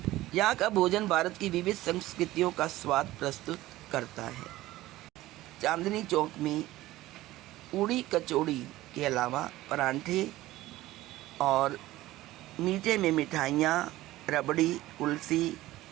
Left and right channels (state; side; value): quieter; left; 16.6 dB